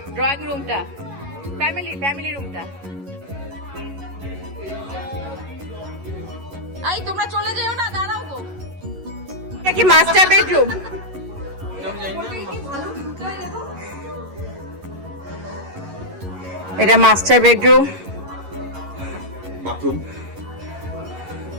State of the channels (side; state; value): left; late; 11 ms